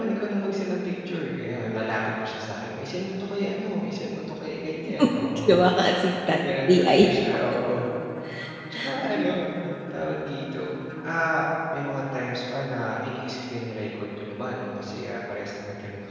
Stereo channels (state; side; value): identical; both; correlation 1.00